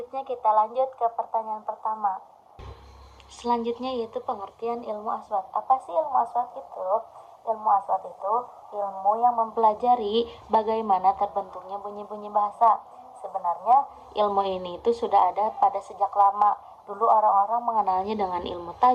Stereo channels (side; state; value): both; identical; correlation 1.00